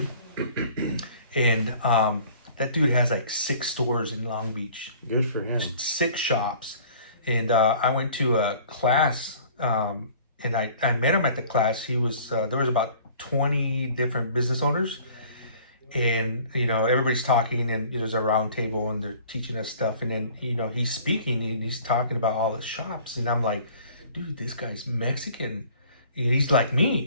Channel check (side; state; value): both; inverted; correlation -0.50